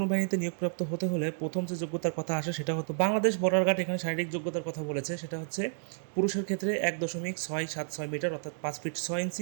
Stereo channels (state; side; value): silent; left; digital silence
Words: বাহিনীতে নিয়োগপ্রাপ্ত হতে হলে প্রথম যে যোগ্যতার কথা আসে সেটা হতো বাংলাদেশ বর্ডার গার্ড এখানে শারীরিক যোগ্যতার কথা বলেছে। সেটা হচ্ছে পুরুষের ক্ষেত্রে 1.676 মিটার অর্থাৎ 5 ফিট 6